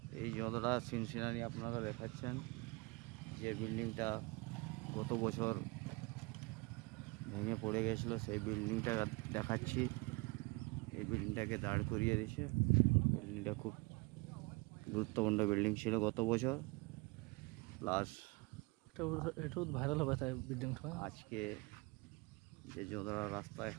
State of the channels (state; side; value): quieter; left; 26.6 dB